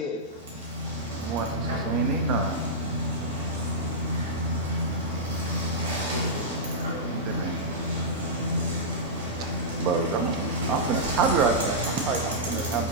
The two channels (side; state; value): both; normal; correlation -0.12